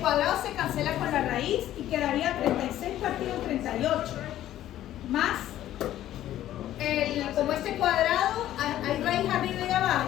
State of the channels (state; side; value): quieter; right; 12.9 dB